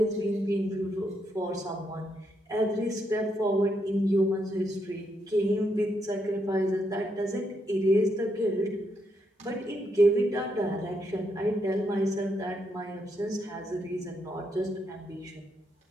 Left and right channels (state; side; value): normal; both; correlation 0.78